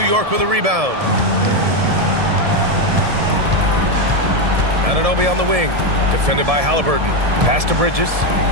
York with a rebound. Anunoby on the wing. Defended by Halliburton. Pass to Bridges.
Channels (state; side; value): late; left; 1.7 ms